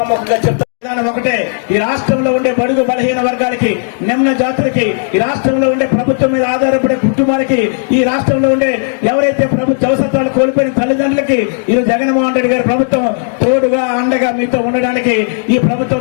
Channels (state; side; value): silent; right; digital silence